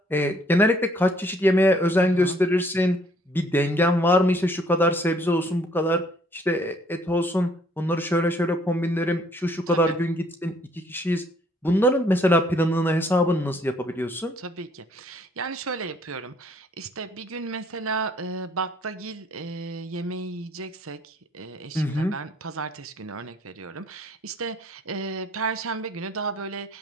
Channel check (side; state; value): both; normal; correlation 0.62